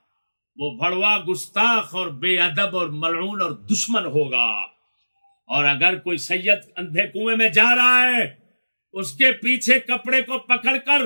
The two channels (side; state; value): both; inverted; correlation -1.00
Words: وہ بھڑوا، گستاخ اور بے ادب اور ملعون اور دشمن ہوگا۔ اور اگر کوئی سید اندھے کنویں میں جا رہا ہے، اس کے پیچھے کپڑے کو پکڑ کر